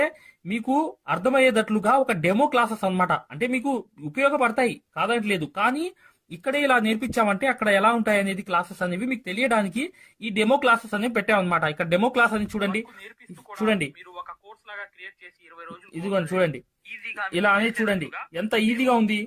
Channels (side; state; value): both; identical; correlation 1.00